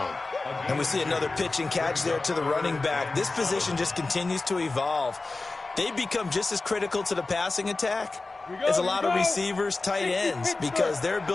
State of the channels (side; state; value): right; quieter; 3.5 dB